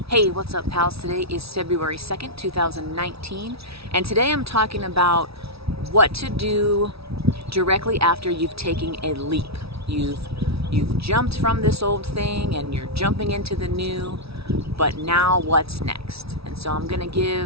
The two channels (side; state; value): left; late; 0.77 ms